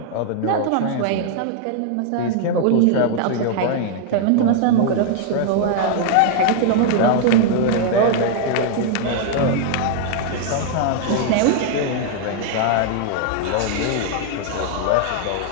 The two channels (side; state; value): both; different; correlation -0.01